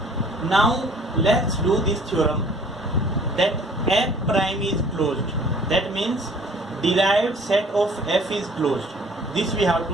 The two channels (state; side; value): normal; both; correlation 0.53